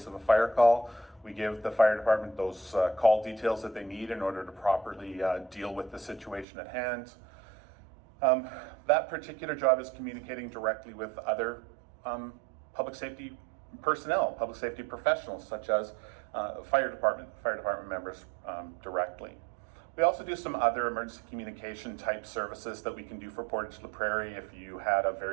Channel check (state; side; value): drops out; left; at 6.5 s